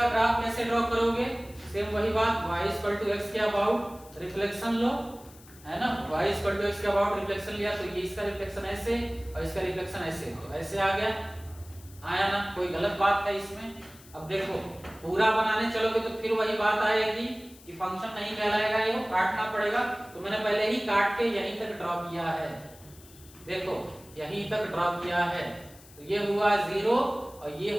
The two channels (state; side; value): noise; left; hiss, 22 dB below the sound